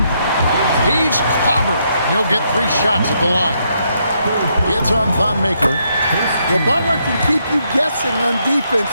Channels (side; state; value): both; inverted; correlation -0.76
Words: He's clobbered. He'll get 3 shots at the line. It's on Thon Maker. Well, Butler can keep you guessing on defense,